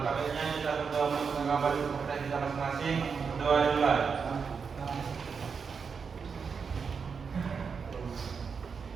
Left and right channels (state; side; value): quieter; left; 5.8 dB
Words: baiknya kita berdoa untuk mengabari kepercayaan kita masing-masing. Berdoa dimulai.